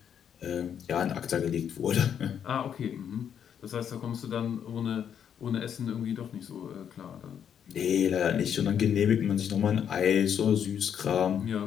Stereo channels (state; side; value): quieter; right; 8.5 dB